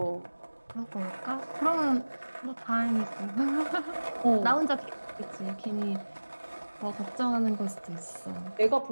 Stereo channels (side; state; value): both; inverted; correlation -1.00